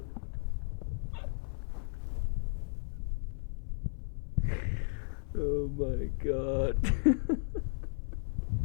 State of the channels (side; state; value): right; silent; 55 dB below the other